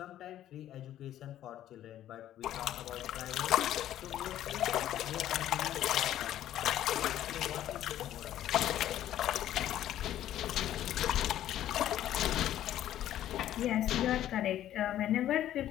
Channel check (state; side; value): quieter; right; 12.3 dB